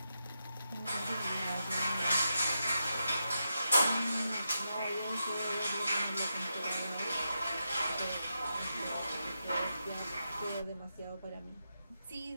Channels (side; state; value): both; inverted; correlation -0.86